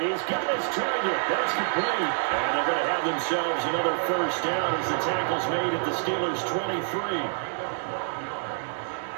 got his target. That's complete. And they're going to have themselves another first down as the tackle's made at the Steelers' 23.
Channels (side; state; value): left; silent; 60 dB below the other